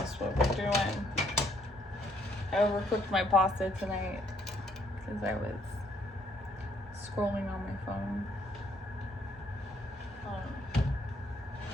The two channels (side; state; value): both; normal; correlation 0.68